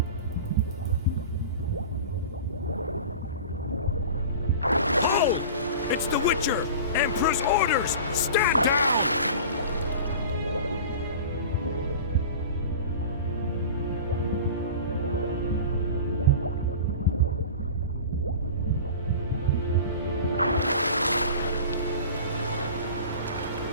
Oh! It's the Witcher! Emperor's orders! Stand down!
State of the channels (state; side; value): inverted; both; correlation -0.36